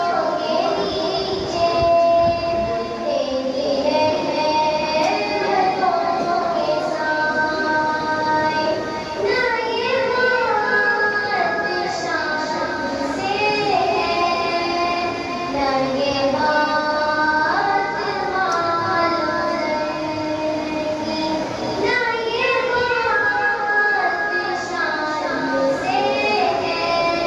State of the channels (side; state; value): both; identical; correlation 1.00